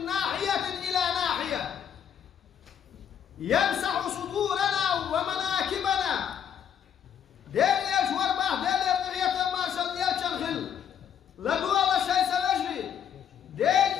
ناحية إلى ناحية يمسح صدورنا ومناكبنا دير يجور باه دير يرغية مارشال يلشنخل لدو الله شيء سنجري دير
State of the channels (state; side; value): quieter; right; 8.8 dB